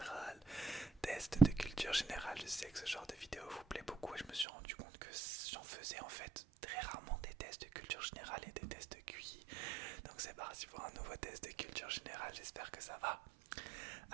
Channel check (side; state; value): left; drops out; at 4.5 s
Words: Test de culture générale, je sais que ce genre de vidéo vous plaît beaucoup et je me suis rendu compte que j'en faisais en fait très rarement des tests de culture générale et des tests de QI. Donc c'est parti pour un nouveau test de culture générale, j'espère que ça va.